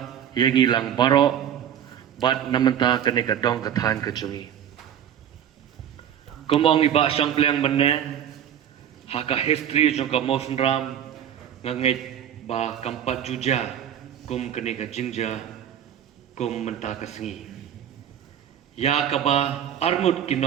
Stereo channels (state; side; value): quieter; left; 9.7 dB